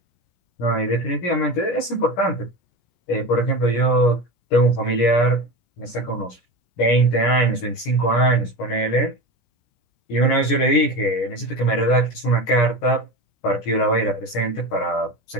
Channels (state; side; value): late; right; 17 ms